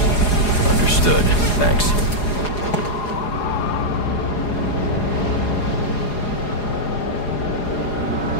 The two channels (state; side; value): late; right; 4.8 ms